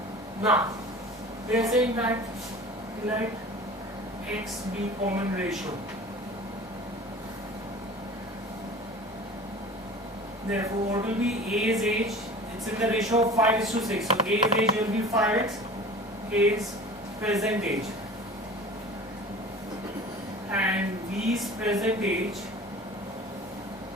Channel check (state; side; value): normal; both; correlation 0.40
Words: Now, they are saying that let X be common ratio. Therefore, what will be A's age? It's in the ratio of 5:6. So A's age will be 5x. A's present age. And B's present age